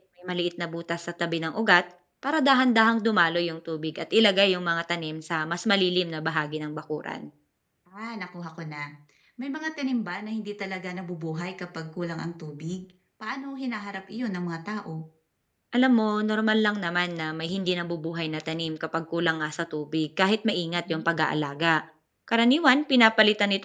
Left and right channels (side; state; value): both; identical; correlation 1.00